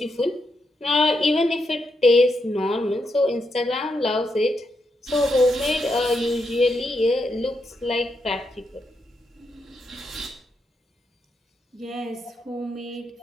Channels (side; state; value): both; normal; correlation 0.82